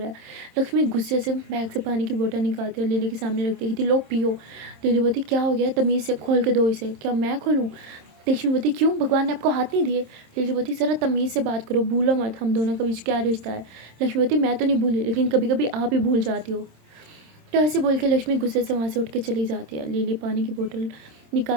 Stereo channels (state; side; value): late; left; 26 ms